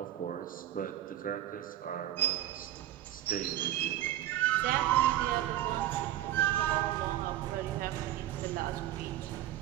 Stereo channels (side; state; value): left; quieter; 13.0 dB